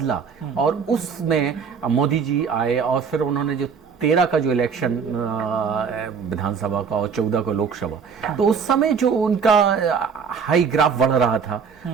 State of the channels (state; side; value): quieter; left; 6.2 dB